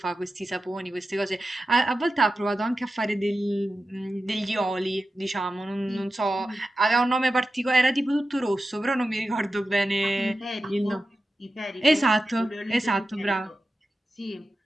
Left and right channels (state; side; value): normal; both; correlation 0.93